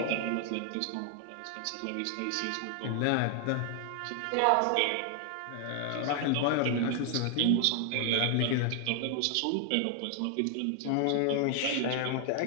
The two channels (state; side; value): different; both; correlation 0.00